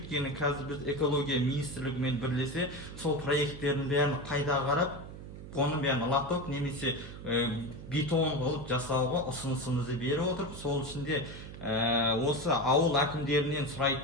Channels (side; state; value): right; noise; hum, 12 dB below the sound